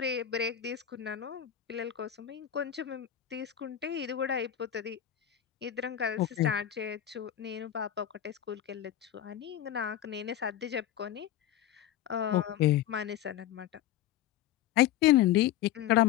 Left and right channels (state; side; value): quieter; right; 11.3 dB